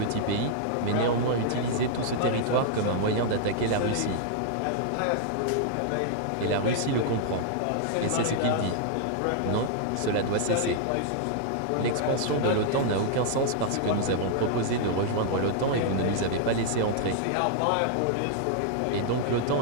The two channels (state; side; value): different; both; correlation -0.01